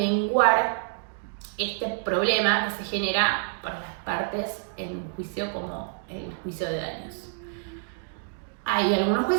este problema que se genera para las partes en un juicio como el juicio de daños. Hay algunos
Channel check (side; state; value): left; silent; digital silence